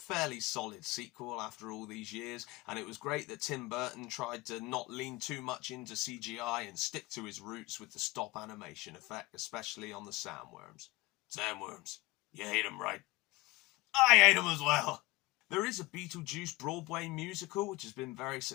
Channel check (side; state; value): right; quieter; 20.8 dB